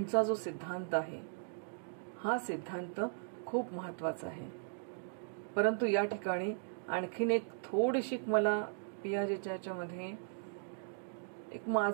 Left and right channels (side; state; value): left; silent; digital silence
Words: जो सिद्धांत आहे हा सिद्धांत खूप महत्वाचा आहे. परंतु या ठिकाणी आणखीन एक थोडीशी मला पियाजेच्या याच्यामध्ये एक